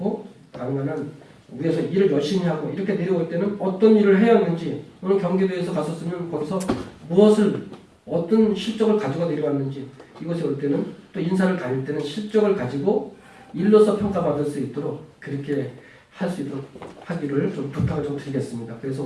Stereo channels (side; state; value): both; identical; correlation 1.00